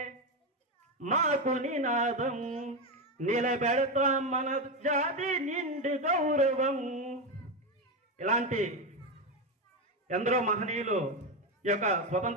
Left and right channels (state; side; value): normal; both; correlation 0.11